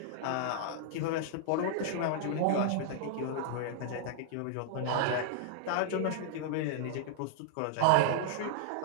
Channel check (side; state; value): both; different; correlation -0.01